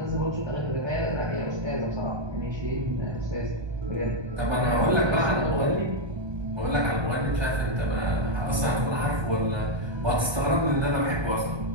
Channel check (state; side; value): late; left; 1.2 ms